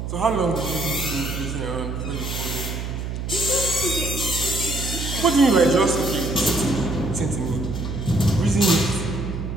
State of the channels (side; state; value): right; noise; hum, 5 dB below the sound